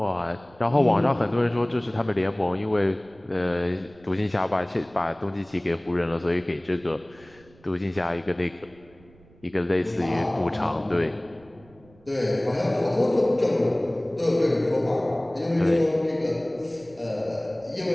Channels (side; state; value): right; noise; rumble, 27 dB below the sound